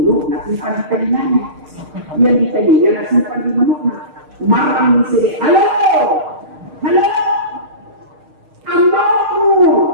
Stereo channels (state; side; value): late; left; 6.5 ms